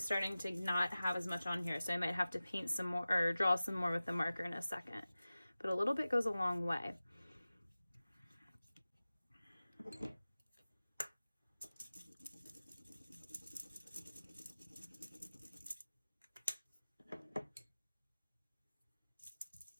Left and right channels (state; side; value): inverted; both; correlation -0.97